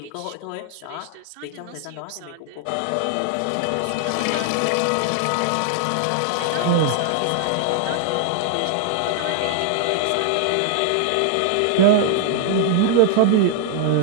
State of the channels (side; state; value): both; different; correlation 0.00